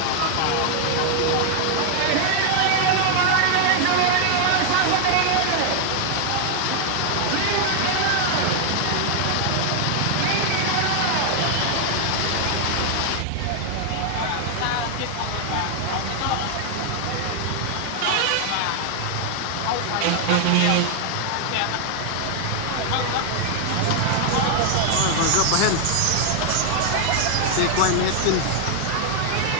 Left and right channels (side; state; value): both; different; correlation 0.00